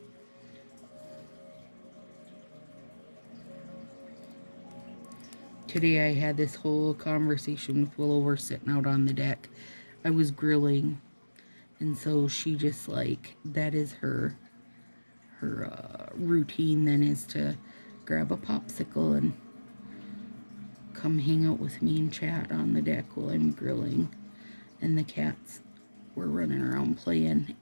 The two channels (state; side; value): inverted; both; correlation -1.00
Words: Today I had this whole conversation with Willow. We're sitting out on the deck. I was grilling, and so she just like, that is her routine then, is to grab a popsicle and come hang out with me and chat on the deck while I'm grilling. And the cats were running around playing.